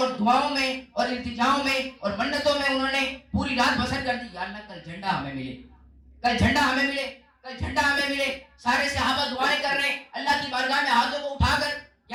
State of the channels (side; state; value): both; identical; correlation 1.00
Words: دعاؤں میں اور التجاؤں میں اور منتوں میں انہوں نے پوری رات بسر کر دی، یا اللہ کل جھنڈا ہمیں ملے، کل جھنڈا ہمیں ملے، کل جھنڈا ہمیں ملے۔ سارے صحابہ دعائیں کر رہے ہیں اللہ کی بارگاہ میں ہاتھوں کو اٹھا کر،